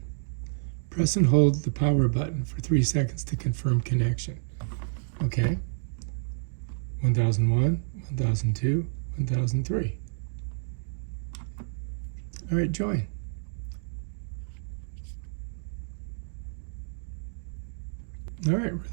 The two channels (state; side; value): silent; left; digital silence